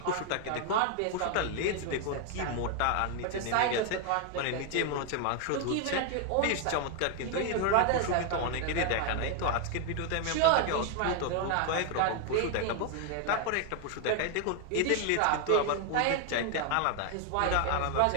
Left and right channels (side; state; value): both; different; correlation 0.00